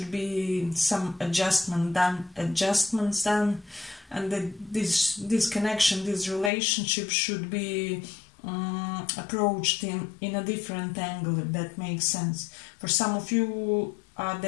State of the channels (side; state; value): right; drops out; at 6.5 s